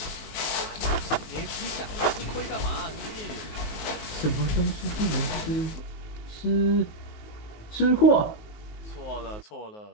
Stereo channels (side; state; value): right; late; 19 ms